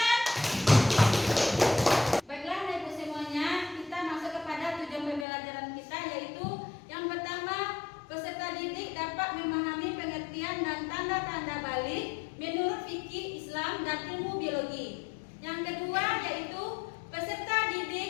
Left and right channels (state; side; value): drops out; right; at 5.2 s